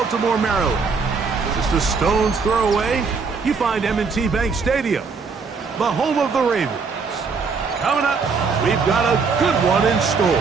Maryland. Just a stone's throw away, you find M&T Bank Stadium, the home of the Ravens. Coming up, we've got a good one in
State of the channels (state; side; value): quieter; left; 5.0 dB